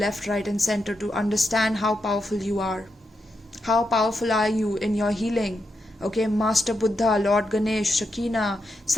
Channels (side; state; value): both; normal; correlation 0.85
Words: right and center to understand how powerful you are. How powerful are you in your healing? Okay, Master Buddha, Lord Ganesh, Shakina,